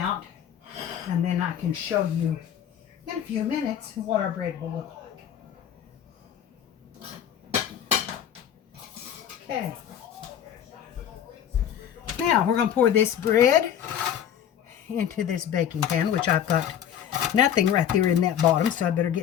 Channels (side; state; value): right; quieter; 9.6 dB